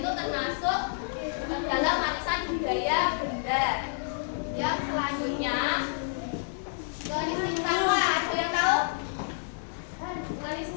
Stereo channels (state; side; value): silent; right; digital silence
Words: termasuk dalam warisan budaya benda. Yang selanjutnya garis cintama, ada yang tahu? Garis